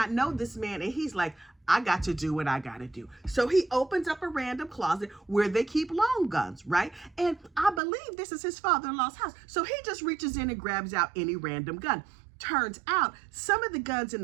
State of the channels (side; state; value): left; drops out; at 7.8 s